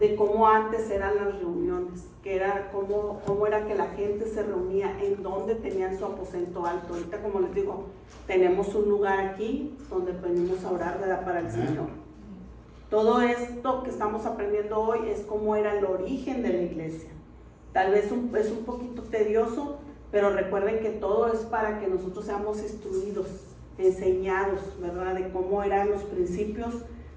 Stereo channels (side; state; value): both; identical; correlation 1.00